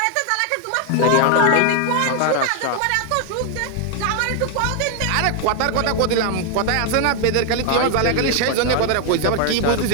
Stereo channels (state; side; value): different; both; correlation 0.00